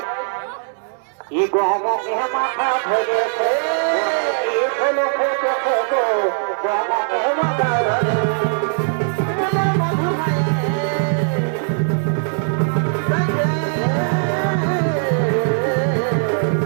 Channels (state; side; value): silent; left; 66 dB below the other